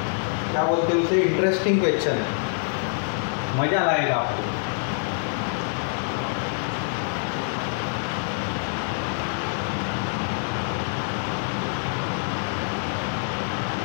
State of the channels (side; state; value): right; silent; 61 dB below the other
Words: बोलते हैं उसे, इंटरेस्टिंग क्वेश्चन है, मज़ा लाएगा आपको।